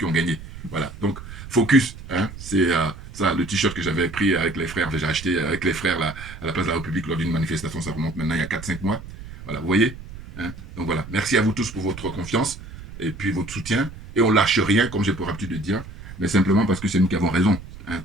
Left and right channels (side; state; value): right; noise; rumble, 14 dB below the sound